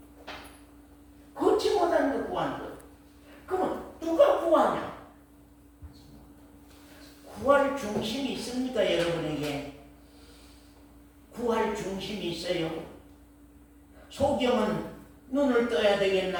고치 못하니까 구하는 거예요. 그러면 누가 구하냐? 구할 중심이 있습니까, 여러분에게? 구할 중심이 있어요. 소경은 눈을 떠야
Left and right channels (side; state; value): both; identical; correlation 1.00